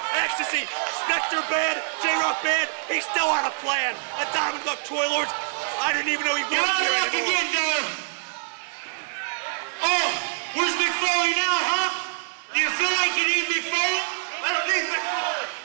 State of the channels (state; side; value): silent; left; 62 dB below the other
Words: Ecstasy. Spectre band. J-Rock band. He's still on a plan. A diamond buck Troy Lords. I didn't even know he was You're out of here luck anymore. again, Doe. Oh, where's Mick Foley now, huh? Do you feel like you need Mick Foley? I don't need Mick Foley.